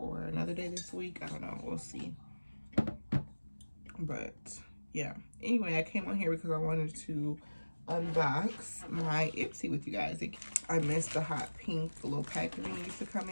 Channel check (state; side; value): inverted; both; correlation -1.00